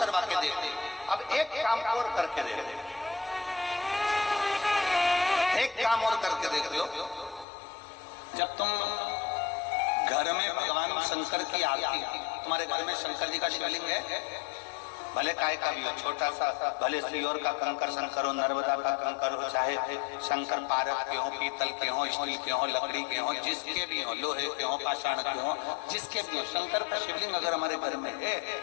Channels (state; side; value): drops out; right; at 7.5 s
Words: के देते। अब एक काम और करके दे दे, एक काम और करके देख लो। जब तुम घर में भगवान शंकर की आरती, तुम्हारे घर में शंकर जी का शिवलिंग है, भले काय का भी हो, छोटा सा, भले सीओर का कंकर शंकर हो, नर्मदा का कंकर हो, चाहे शंकर पारक के हो, पीतल के हो, स्टील के हो, लकड़ी के हो, जिसके भी हो, लोहे के हो, पाषाण के हो, जिसके भी हो, शंकर का शिवलिंग अगर हमारे घर में है